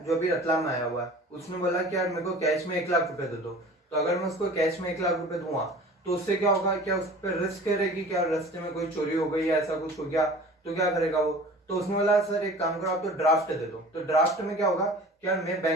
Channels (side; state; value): both; normal; correlation 0.42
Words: जो अभी रतलाम में आया हुआ है। उसने बोला कि यार मेरे को कैश में 1,00,000 रुपए दे दो। तो अगर मैं उसको कैश में 1,00,000 रुपए दूंगा तो उससे क्या होगा, क्या उस पर रिस्क रहेगी, क्या रास्ते में कोई चोरी हो गई या ऐसा कुछ हो गया तो क्या करेगा वो। तो उसने बोला सर एक काम करो आप तो ड्राफ्ट दे दो। तो ड्राफ्ट में क्या होगा, क्या मैं